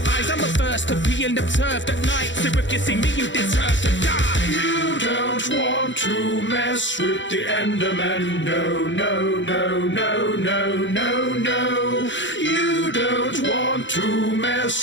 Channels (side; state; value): right; late; 0.54 ms